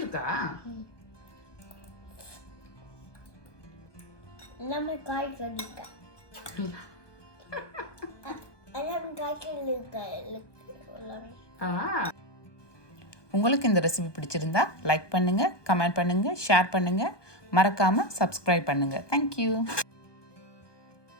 எல்லாமே காய்கறி இருக்கு. உங்களுக்கு இந்த ரெசிபி பிடிச்சிருந்தா லைக் பண்ணுங்கள், கமெண்ட் பண்ணுங்கள், ஷேர் பண்ணுங்கள், மறக்காமல் சப்ஸ்கிரைப் பண்ணுங்கள். தேங்க்யூ.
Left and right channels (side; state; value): right; late; 1.2 ms